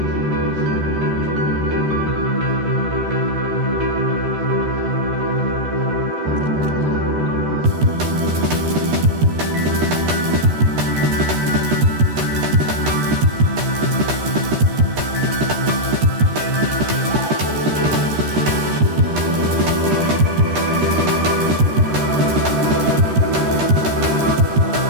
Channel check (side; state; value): left; late; 13 ms